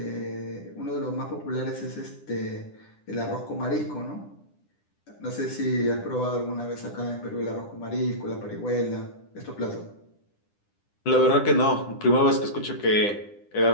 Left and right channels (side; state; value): right; late; 9.9 ms